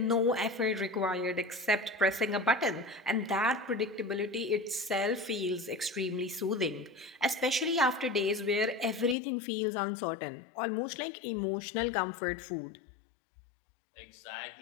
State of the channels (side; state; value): right; drops out; at 9.2 s